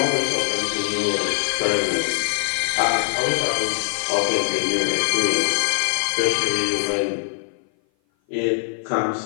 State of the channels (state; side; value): silent; right; 57 dB below the other